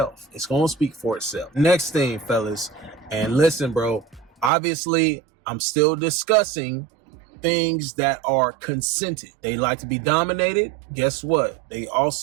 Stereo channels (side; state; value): left; drops out; at 4.5 s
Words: It's gonna speak for itself. Next thing, fellas, and listen, bro, obviously I'm still discussing things that are consented. They like to be dominated. Guess what? They